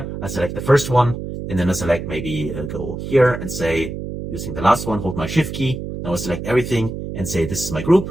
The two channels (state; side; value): noise; right; hum, 7 dB below the sound